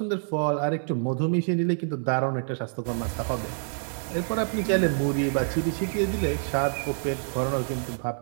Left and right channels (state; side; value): silent; left; 60 dB below the other